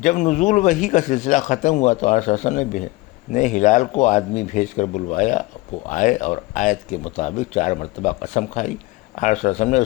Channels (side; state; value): right; quieter; 21.1 dB